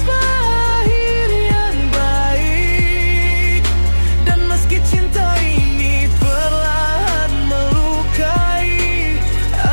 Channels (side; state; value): both; inverted; correlation -1.00